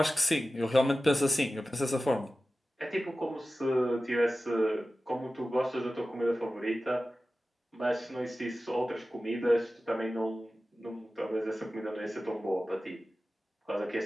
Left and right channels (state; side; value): normal; both; correlation 0.95